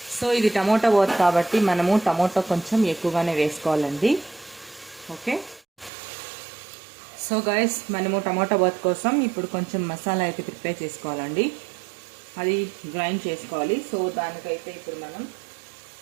సో ఇది టమోటా బాత్ కాబట్టి మనము టమోటా కొంచెం ఎక్కువగానే వేసుకోవాలండి. ఓకే, సో గైస్ మనము టమోటా బాత్ కోసం ఇప్పుడు కొంచెం మసాలా అయితే ప్రిపేర్ చేసుకోవాలండి. అది గ్రైండ్ చేసుకోవాలి. సో దానికైతే ఇప్పుడు మనం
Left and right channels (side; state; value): left; drops out; at 5.9 s